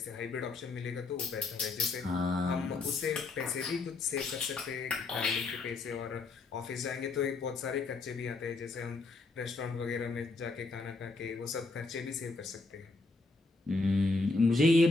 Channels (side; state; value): right; quieter; 3.6 dB